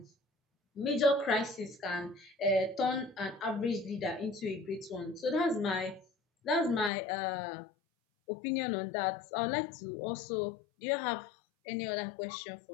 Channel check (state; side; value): drops out; right; at 6.9 s